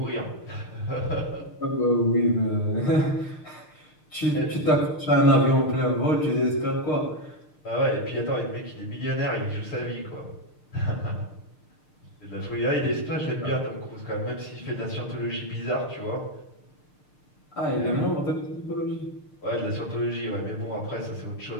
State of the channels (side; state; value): right; late; 6.6 ms